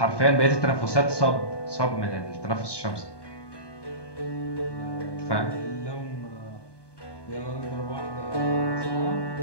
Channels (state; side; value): late; right; 1.2 ms